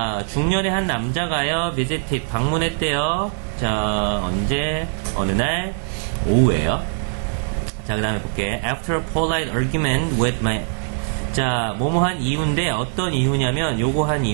중년의 한 남자가요, 비지트 방문했대요. 자, 언제? 어느 날 오후에요. 자, 그 다음에 볼게. After a polite argument with my 자, 뭐뭐한 이유인데 어떤 이유냐면 요거 한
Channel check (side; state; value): left; silent; digital silence